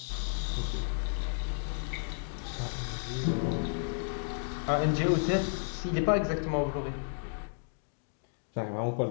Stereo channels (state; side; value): silent; right; digital silence